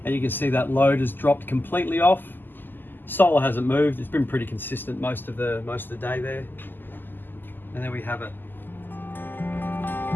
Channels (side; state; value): right; late; 0.091 ms